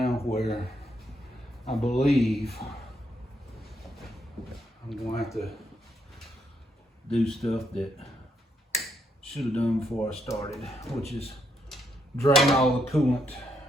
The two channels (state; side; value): normal; both; correlation 0.77